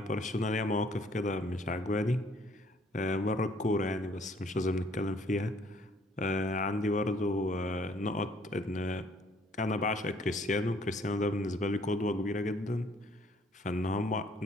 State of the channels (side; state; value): both; normal; correlation 0.61